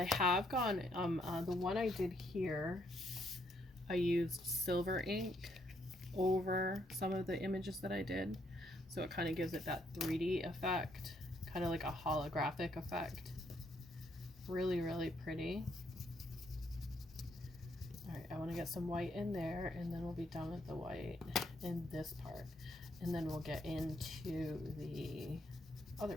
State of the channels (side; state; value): both; normal; correlation 0.73